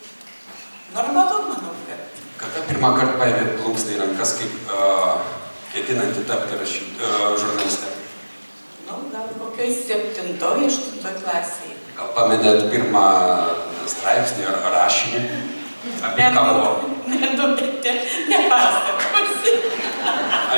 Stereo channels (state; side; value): inverted; both; correlation -1.00